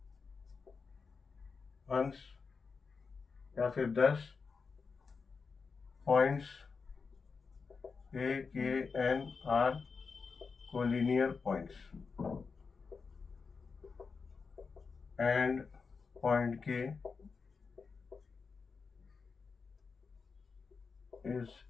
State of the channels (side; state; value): right; quieter; 5.0 dB